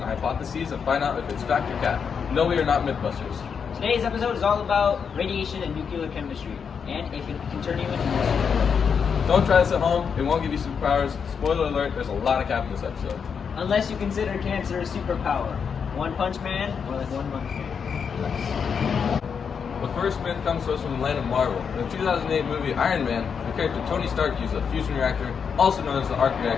hypotheses and find out if it's fact or cat. No, we are not Mythbusters. Today's episode is all about radiation and nuclear chemistry, and if it can turn you into a Don't try this at home, it won't give you superpowers. Spoiler alert, there's a lot of cap in this episode. unless you consider cancer a superpower. One Punch Man, or like 1 month man. The first myth comes to us from the land of Marvel. In the 2008 movie Iron Man, the character Tony Stark used a fusion reactor, also known as the arc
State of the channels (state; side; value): quieter; right; 6.5 dB